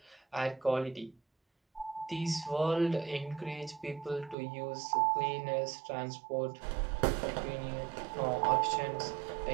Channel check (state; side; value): drops out; left; at 4.4 s